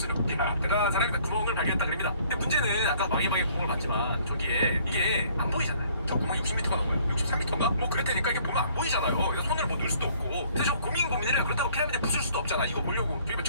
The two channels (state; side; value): inverted; both; correlation -0.59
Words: 야 대단한 사람이다. 구멍을 발견했다 그럽니다. 근데 문제는 아까 왕의 방에 구멍을 봤지만 저기에 이게 안 보이잖아요. 저 구멍이 60m가 넘어요. 63m인가? 뭐 그랬다니까 이게 보면 안 보이잖아요. 그래서 손을 뭐 넣을 수도 없고. 그래서 저 고민을 해요. 그렇다고 피라미드 부술 수도 없잖아. 이거 보려고 저기 뭐